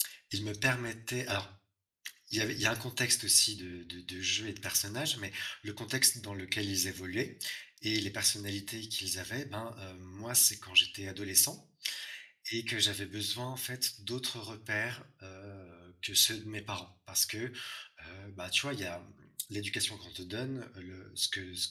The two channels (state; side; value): identical; both; correlation 1.00